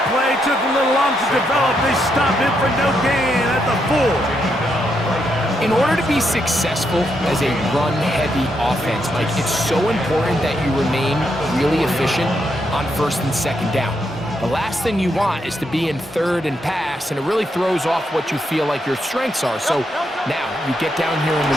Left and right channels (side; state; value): both; normal; correlation 0.79